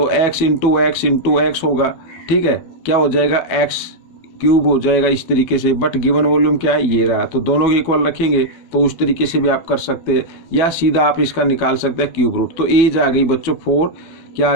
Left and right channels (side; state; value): right; late; 12 ms